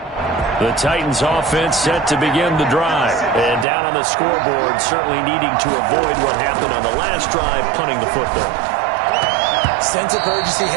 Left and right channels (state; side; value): drops out; left; at 3.7 s